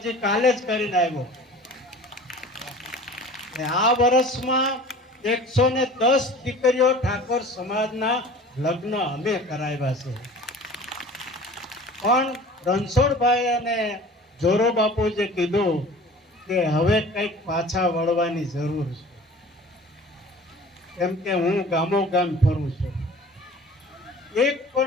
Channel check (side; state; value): both; normal; correlation 0.43